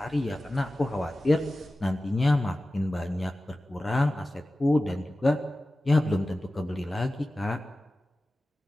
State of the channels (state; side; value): normal; both; correlation 0.95